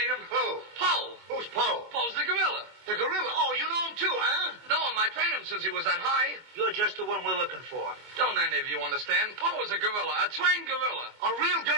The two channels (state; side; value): late; left; 24 ms